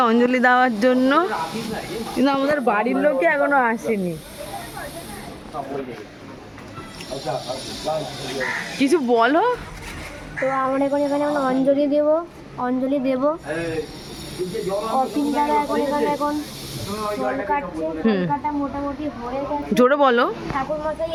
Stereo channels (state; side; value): identical; both; correlation 1.00